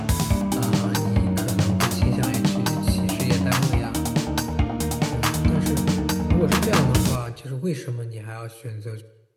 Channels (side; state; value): both; identical; correlation 1.00